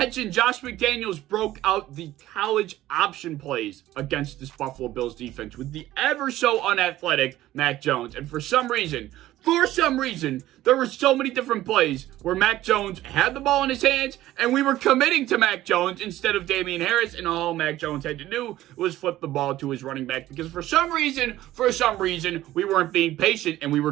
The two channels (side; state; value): left; quieter; 14.9 dB